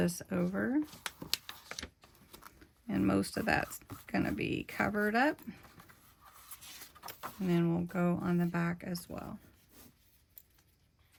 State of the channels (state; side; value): identical; both; correlation 1.00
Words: over, and most of that's going to be covered up, and then we'll go on the back as well.